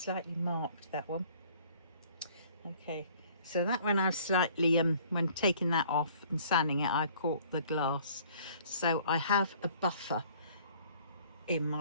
marked that one. Okay, so that one I've slightly when taking that off and sanding it, I caught the glass. So I have a buffer in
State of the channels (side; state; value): both; inverted; correlation -0.55